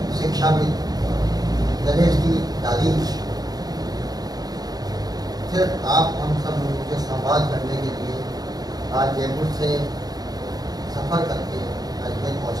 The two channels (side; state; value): left; late; 0.19 ms